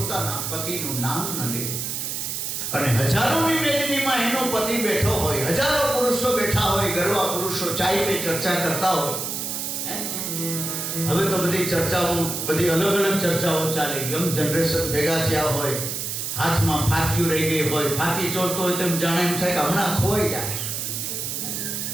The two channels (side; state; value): right; noise; hiss, 3 dB below the sound